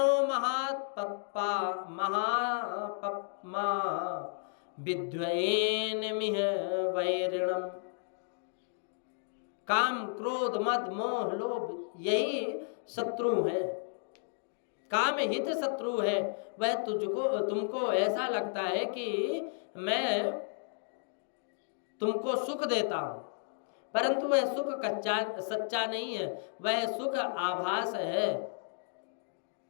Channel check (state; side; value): silent; right; digital silence